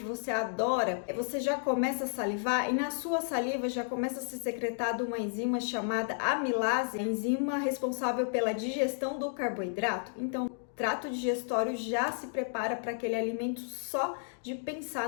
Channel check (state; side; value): silent; right; digital silence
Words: você adora, você já começa a salivar e na sua saliva já começa a ser secretada uma enzima chamada amilase, a enzima responsável pela digestão do carboidrato? Então, o trato digestório já se prepara para aquele alimento só de pensar